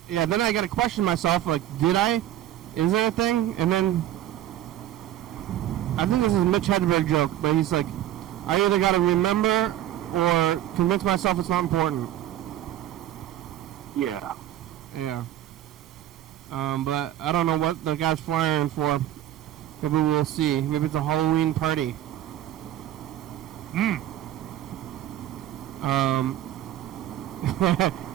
Yeah, then I got to question myself, like, is there a thing? And then, I think this is a Mitch Hedberg joke, but he's like, I either got to remember or convince myself it's not important. Yeah. Yeah. But I don't know what the guy's flying for. Maybe we'll see. Maybe it's a Halloween party. Are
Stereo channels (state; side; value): quieter; left; 12.8 dB